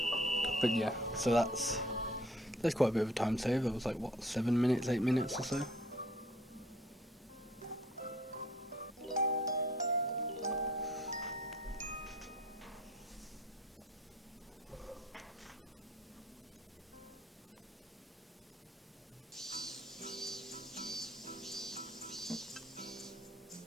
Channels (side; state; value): both; normal; correlation 0.56